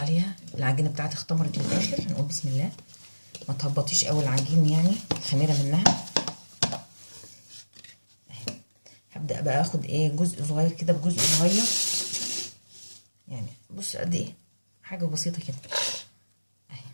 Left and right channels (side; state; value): both; inverted; correlation -1.00